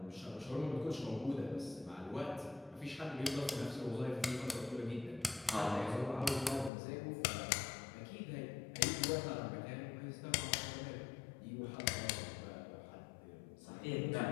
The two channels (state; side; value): drops out; right; at 6.7 s